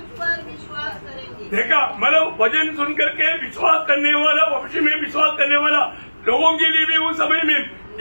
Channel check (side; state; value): both; inverted; correlation -1.00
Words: पर विश्वास करेंगे। देखा, मतलब वचन सुन करके विश्वास करने वाला, भविष्य में विश्वास करने वाला लोगों के लिए भी उस समय में